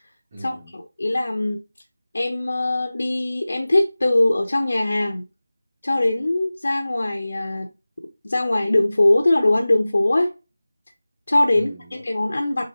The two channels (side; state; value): both; inverted; correlation -0.98